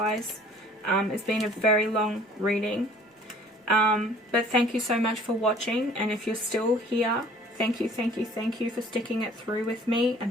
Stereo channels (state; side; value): normal; both; correlation 0.53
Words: It's been a very long reading. But thank you so much for watching. And if you're still here, thank you, thank you, thank you for sticking it through with me